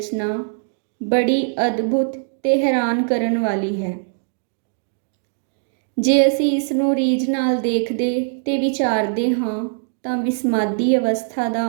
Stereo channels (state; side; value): silent; left; digital silence